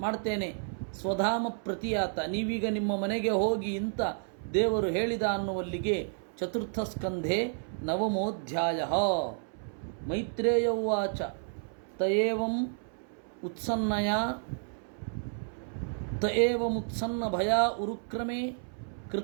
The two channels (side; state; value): left; silent; 57 dB below the other